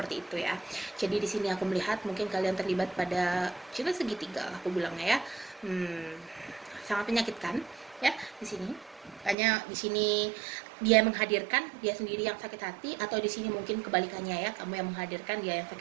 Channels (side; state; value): left; drops out; at 9.3 s